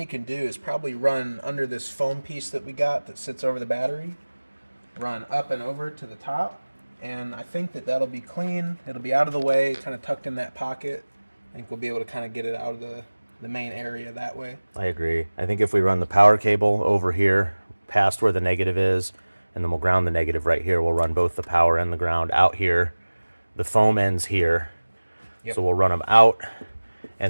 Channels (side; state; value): both; inverted; correlation -1.00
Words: can do is probably run under this foam piece that we got that sits over the battery, run up and over to the top, and I think that that'll be clean. It'll be out of the way, kind of tucked in that pocket. I think we'll be able to kind of get it out of the main area that way. I agree. I think if we run the power cable over here past where the negative is, and then we'll ground the negative right here, we'll run both the power and the ground out here. The foam ends here. Yep. So we'll run them out